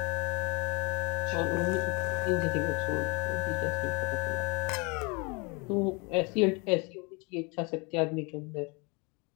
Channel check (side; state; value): right; quieter; 30.2 dB